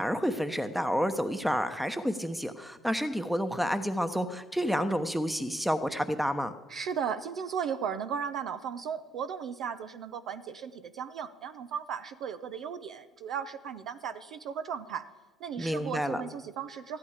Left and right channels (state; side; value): normal; both; correlation 0.80